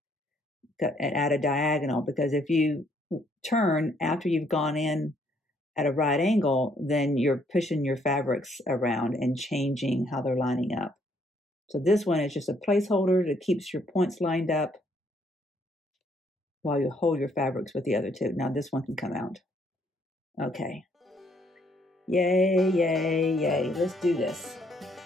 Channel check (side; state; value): both; normal; correlation 0.68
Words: at a diagonal. Because if you turn after you've gone in at a right angle, then you're pushing your fabrics around and changing how they're lining up. So this one is just a placeholder that keeps your points lined up while you hold your fabrics with the other two. Now this one can come out. Okay. Yay, yay, yay. Let's do this.